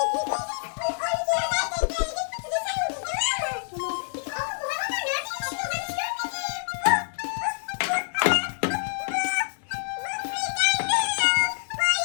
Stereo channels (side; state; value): right; silent; digital silence